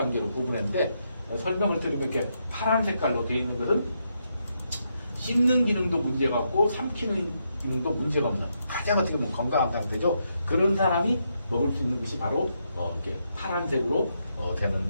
구분했는데 설명을 들으면 이렇게 파란 색깔로 되어 있는 것은 씹는 기능도 문제가 없고 삼키는 기능도 문제가 없는 가장 어떻게 보면 건강한 상태죠. 그런 사람이 먹을 수 있는 것이 바로 이렇게 파란색으로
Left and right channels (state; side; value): inverted; both; correlation -0.80